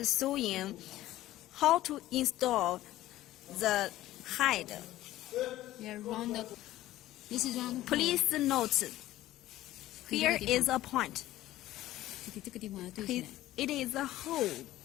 showing how to install the hide. Please note, here is a point. It is a hole,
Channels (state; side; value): quieter; right; 15.0 dB